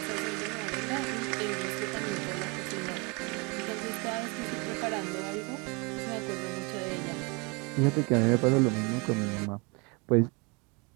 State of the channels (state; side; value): quieter; left; 29.9 dB